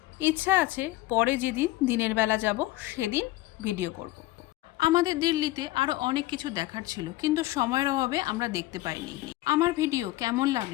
ইচ্ছা আছে পরে যেদিন দিনের বেলা যাব সেদিন ভিডিও করব। আমাদের দিল্লিতে আরও অনেক কিছু দেখার ছিল, কিন্তু সময়ের অভাবে আমরা দেখতে পাইনি। আমার ভিডিও কেমন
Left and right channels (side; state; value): right; quieter; 17.5 dB